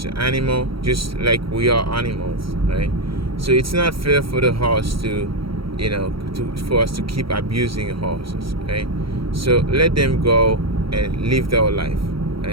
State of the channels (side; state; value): left; late; 0.75 ms